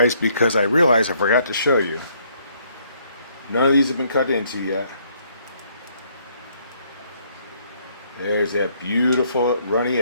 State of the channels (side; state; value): both; inverted; correlation -0.67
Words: because I realized I forgot to show you. None of these have been cut into yet. There's that beautiful runny